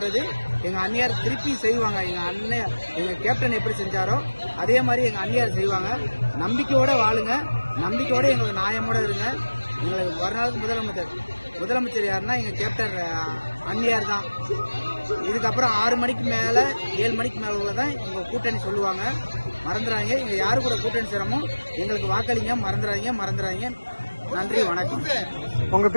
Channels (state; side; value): inverted; both; correlation -1.00